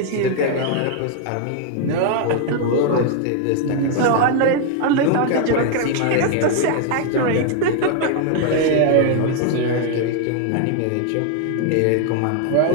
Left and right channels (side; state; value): both; different; correlation 0.00